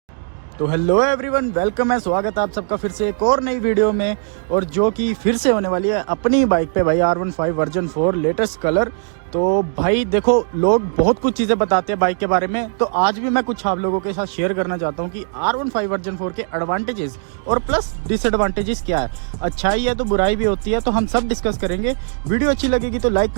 तो हेलो एवरीवन, वेलकम है, स्वागत है आप सबका फिर से एक और नई वीडियो में। और जो कि फिर से होने वाली है अपनी बाइक पे भाई R15 वर्जन 4 लेटेस्ट कलर। तो भाई देखो, लोग बहुत कुछ चीज़ें बताते हैं बाइक के बारे में, तो आज भी मैं कुछ आप लोगों के साथ शेयर करना चाहता हूँ कि R15 वर्जन 4 के एडवांटेजेस और प्लस डिसएडवांटेजेस क्या है। अच्छाई है तो बुराई भी होती है, तो हम सब डिस्कस करेंगे। वीडियो अच्छी लगेगी तो लाइक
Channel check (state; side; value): silent; left; digital silence